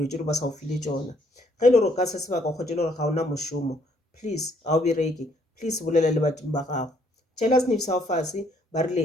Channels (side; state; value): both; normal; correlation 0.67